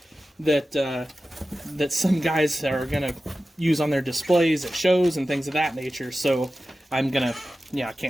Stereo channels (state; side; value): normal; both; correlation 0.94